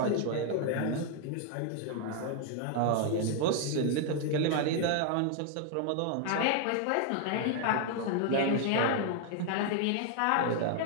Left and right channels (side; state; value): both; different; correlation 0.00